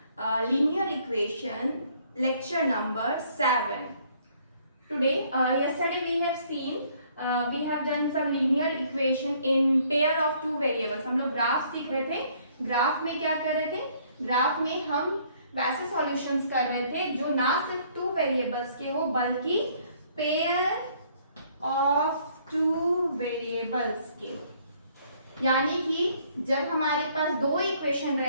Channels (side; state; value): both; inverted; correlation -0.63